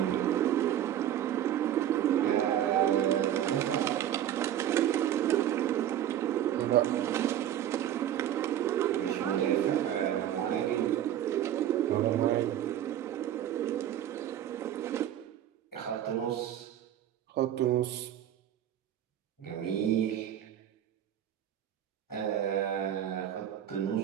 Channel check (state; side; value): quieter; left; 11.2 dB